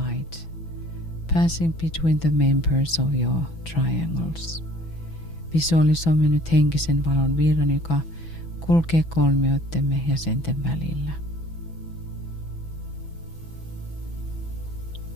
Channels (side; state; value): right; late; 6.0 ms